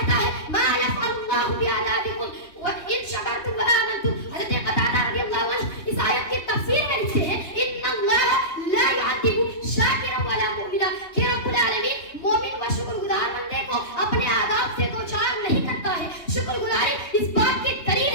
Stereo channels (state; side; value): late; right; 3.2 ms